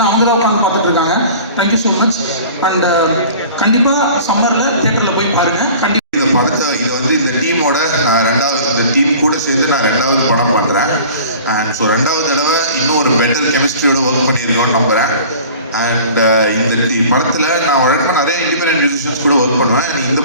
அவங்க தான் உட்காந்து பார்த்துட்டு இருக்காங்க. Thank you so much. அண்ட் கண்டிப்பாக சம்மரில் தியேட்டரில் போய் பாருங்கள். கண்டிப்பாக இந்த படத்தை இந்த டீமோட இந்த டீம் கூட சேர்ந்து நான் 2வது படம் பண்ணுறேன். அண்ட் ஸோ 2வது தடவை இன்னும் ஒரு பெட்டர் கெமிஸ்ட்ரியோட ஒர்க் பண்ணியிருக்கோன்னு நம்புகிறேன். அண்ட் இந்த படத்தில் நான் வழக்கமாக நிறைய இண்டிபெண்டன்ட் மியூசிஷியன்ஸ் கூட ஒர்க் பண்ணுவேன். இந்த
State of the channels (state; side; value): inverted; both; correlation -0.43